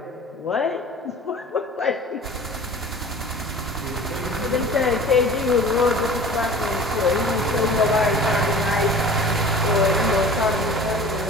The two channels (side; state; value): both; normal; correlation 0.41